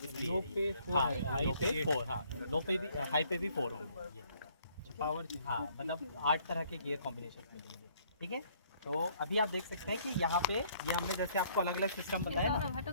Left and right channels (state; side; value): inverted; both; correlation -0.63